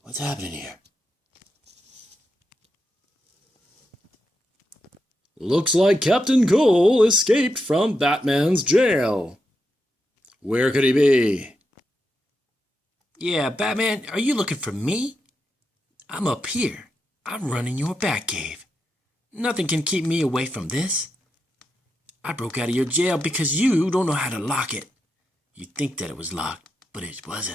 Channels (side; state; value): both; normal; correlation 0.85